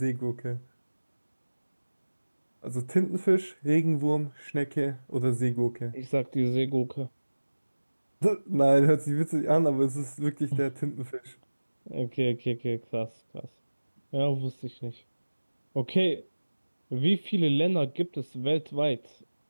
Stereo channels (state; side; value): inverted; both; correlation -1.00